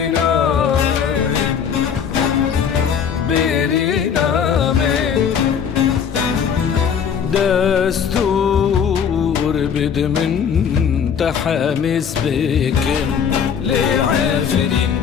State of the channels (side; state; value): right; quieter; 7.4 dB